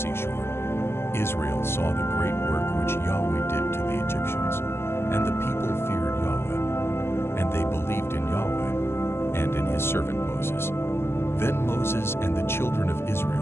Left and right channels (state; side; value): late; right; 0.12 ms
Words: Israel saw the great work which Yahweh did to the Egyptians, and the people feared Yahweh, and they believed in Yahweh and in his servant Moses. Then Moses and the children of